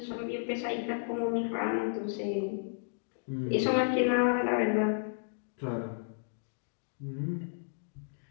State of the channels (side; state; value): right; silent; digital silence